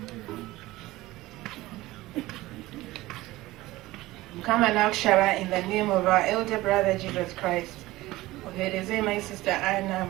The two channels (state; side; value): quieter; left; 18.2 dB